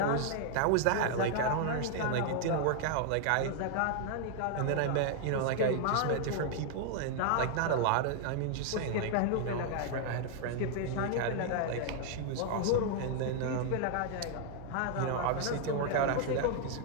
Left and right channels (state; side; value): different; both; correlation 0.00